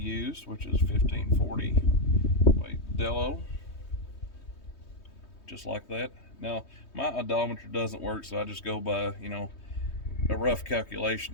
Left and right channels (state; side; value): late; right; 3.2 ms